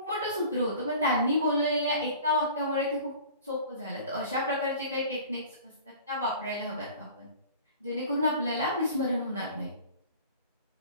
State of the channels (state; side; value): inverted; both; correlation -0.43